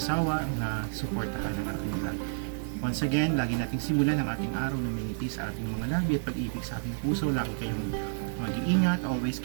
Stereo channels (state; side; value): silent; left; digital silence